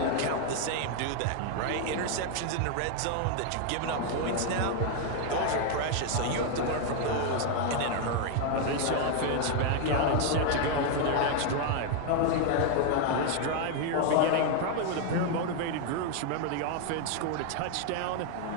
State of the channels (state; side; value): different; both; correlation 0.01